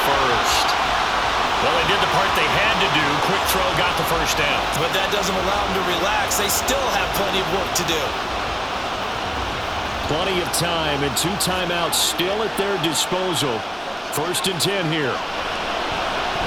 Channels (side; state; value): both; identical; correlation 1.00